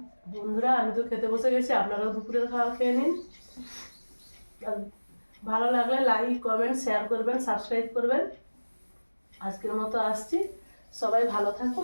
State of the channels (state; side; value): inverted; both; correlation -1.00